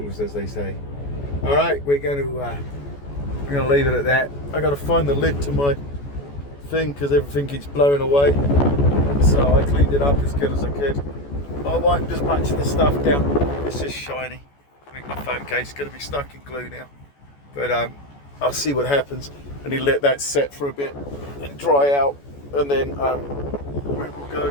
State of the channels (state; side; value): late; right; 14 ms